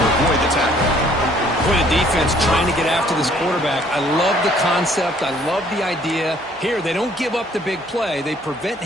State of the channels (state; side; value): normal; both; correlation 0.61